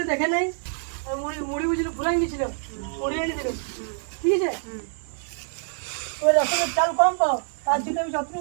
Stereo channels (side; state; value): left; silent; digital silence